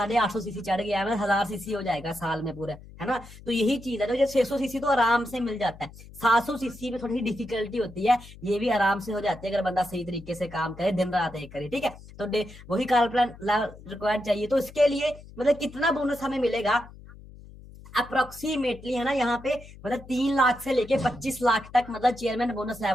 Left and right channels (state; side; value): noise; left; hum, 18 dB below the sound